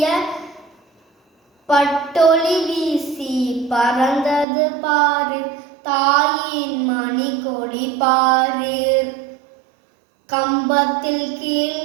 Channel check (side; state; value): left; drops out; at 4.5 s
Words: பட்டொளி வீசி பறந்தது பாரு தாயின் மணி கொடி பாரு கம்பத்தில் கீழ்